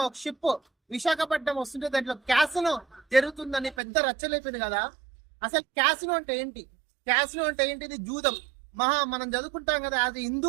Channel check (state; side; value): drops out; left; at 3.8 s